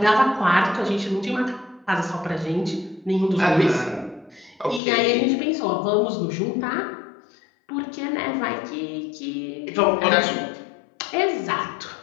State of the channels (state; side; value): drops out; right; at 4.8 s